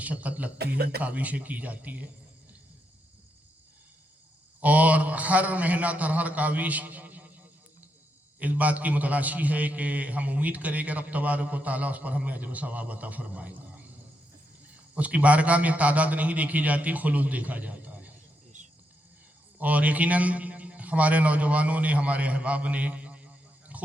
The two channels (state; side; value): normal; both; correlation 0.82